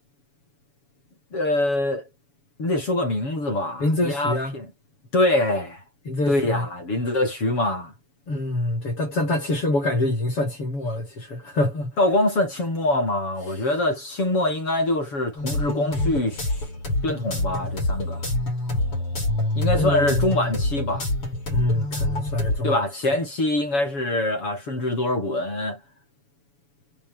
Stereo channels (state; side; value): late; right; 7.1 ms